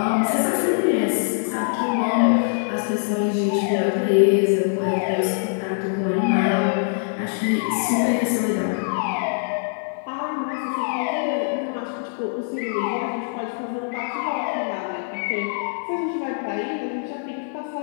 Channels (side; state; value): right; silent; 63 dB below the other